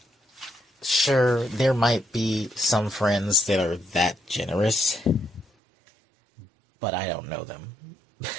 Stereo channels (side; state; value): left; drops out; at 5.5 s